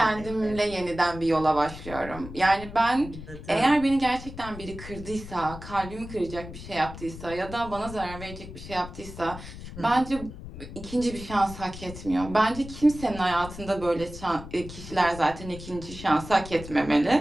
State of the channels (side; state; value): left; noise; rumble, 12 dB below the sound